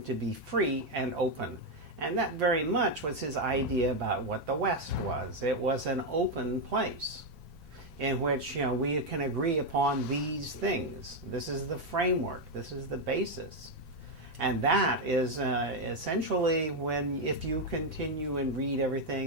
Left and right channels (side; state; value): both; normal; correlation 0.04